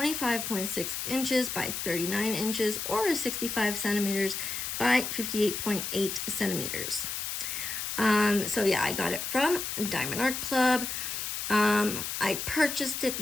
inches by 39 inches, or 65 centimeters by 58.8 centimeters. So yeah, I got it from Diamond Art Club. I purchased it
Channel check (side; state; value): left; noise; hiss, 4 dB below the sound